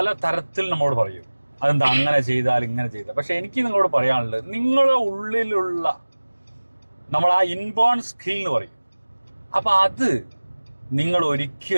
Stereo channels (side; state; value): both; inverted; correlation -1.00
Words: തരത്തിൽ നമ്മോട് പറയും, അതെന്താ അങ്ങനെ ചെയ്താൽ ഇങ്ങനെ ചെയ്താൽ. പക്ഷെ എനിക്ക് നിങ്ങളോട് പറയാനുള്ളത്, നിങ്ങളുടെ ഉള്ളിലുള്ള നമ്മൾ ആ ഇൻബോൺ സ്കിൽ എന്ന് പറയും, അപ്പൊ അത് നിങ്ങൾ